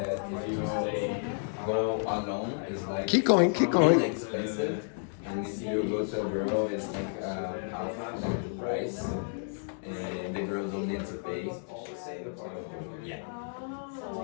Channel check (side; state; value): right; silent; digital silence